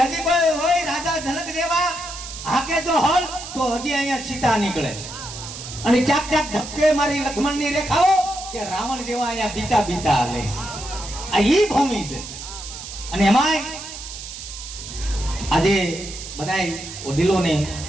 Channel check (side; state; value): right; noise; hiss, 11 dB below the sound